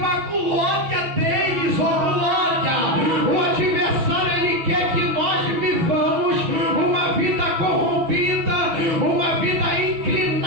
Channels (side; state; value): left; late; 6.2 ms